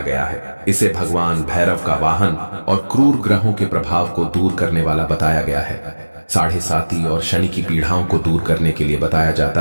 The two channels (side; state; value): both; inverted; correlation -1.00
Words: गया है। इसे भगवान भैरव का वाहन और क्रूर ग्रहों के प्रभाव को दूर करने वाला बताया गया है। साढ़े साती और शनि की पीड़ाओं को दूर करने के लिए बताया